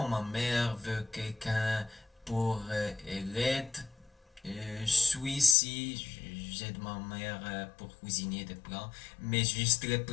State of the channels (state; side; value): drops out; right; at 5.6 s